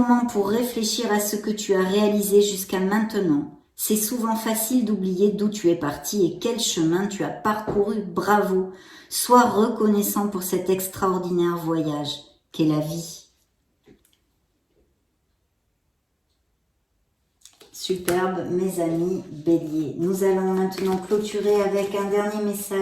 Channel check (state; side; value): identical; both; correlation 1.00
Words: pour réfléchir à ce que tu as réalisé jusqu'à maintenant. C'est souvent facile d'oublier d'où tu es parti et quel chemin tu as parcouru. Bravo. Sois reconnaissant pour cet extraordinaire voyage qu'est la vie. Superbe, mes amis béliers. Nous allons maintenant clôturer avec un dernier